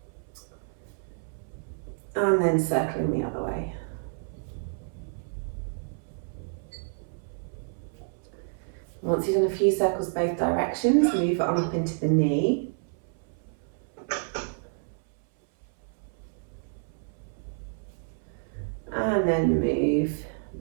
and then circling the other way. Once you've done a few circles both directions, move it on up into the knee. And then move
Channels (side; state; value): left; silent; 58 dB below the other